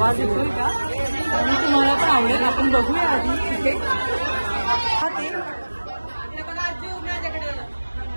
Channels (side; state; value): both; inverted; correlation -1.00